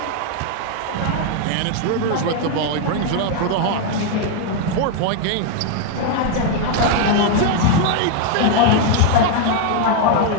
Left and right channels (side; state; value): both; different; correlation 0.00